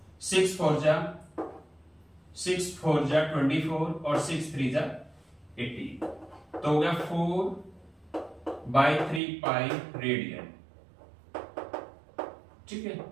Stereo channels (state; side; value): drops out; left; at 9.2 s